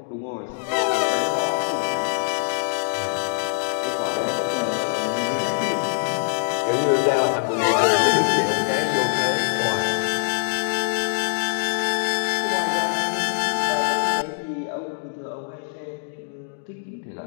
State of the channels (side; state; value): right; silent; digital silence